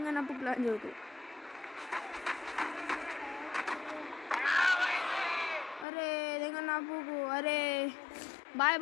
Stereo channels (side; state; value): right; drops out; at 5.9 s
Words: ప్లాన్ జరుగుతుంది అరే దింగన్నప్పు అరే బాయ్